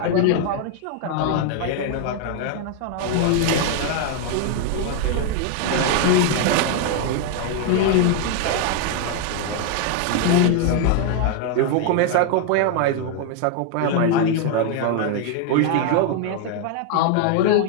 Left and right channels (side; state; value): both; different; correlation 0.00